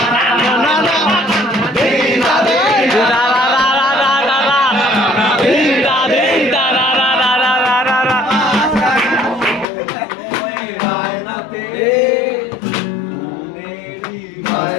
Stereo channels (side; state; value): right; drops out; at 9.7 s